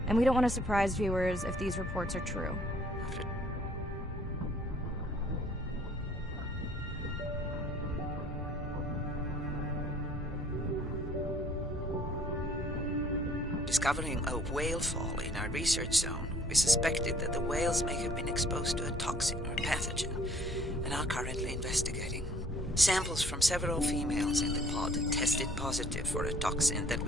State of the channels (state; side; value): normal; both; correlation 0.58